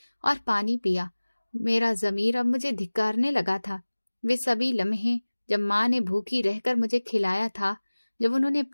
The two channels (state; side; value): inverted; both; correlation -1.00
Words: और पानी पिया। मेरा ज़मीर अब मुझे धिक्कारने लगा था। वे सभी लम्हे जब माँ ने भूखी रहकर मुझे खिलाया था, जब उन्होंने